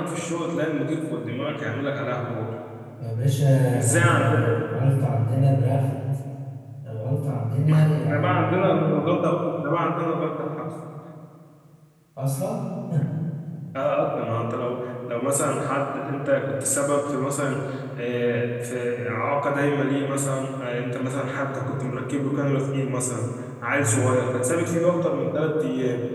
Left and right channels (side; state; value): both; identical; correlation 1.00